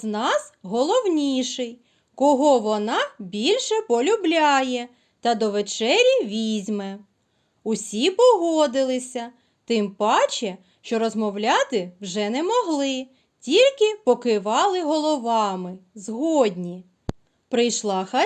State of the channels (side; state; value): both; identical; correlation 1.00